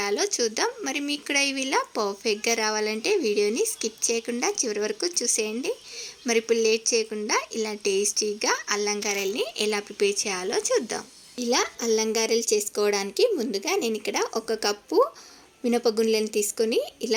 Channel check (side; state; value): both; identical; correlation 1.00